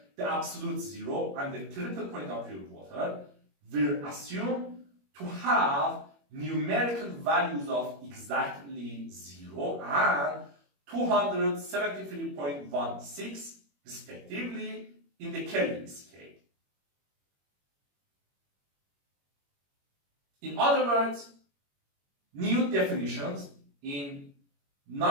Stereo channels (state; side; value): late; left; 21 ms